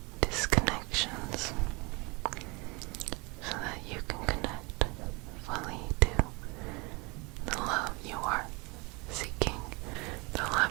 disconnections so that you can connect fully to the love you are seeking. The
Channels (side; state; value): left; quieter; 27.6 dB